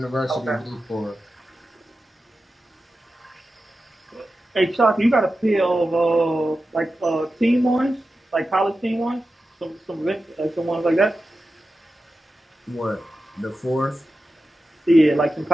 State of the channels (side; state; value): both; normal; correlation 0.92